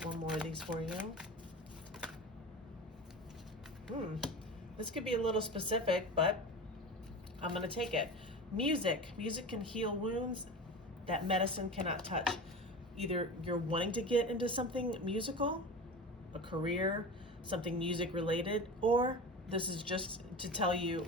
one more of these for you. This could be a little specific, but I'm going to take it. Music. Music can heal wounds that medicine cannot touch. Either you're wanting to get into something musical, a career, something music related, or this is just to tell you,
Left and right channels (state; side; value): normal; both; correlation 0.30